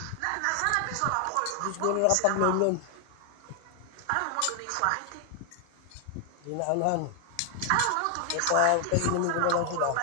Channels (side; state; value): both; different; correlation 0.00